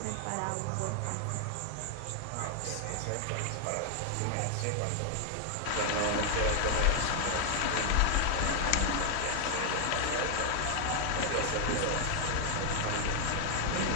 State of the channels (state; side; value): different; both; correlation 0.00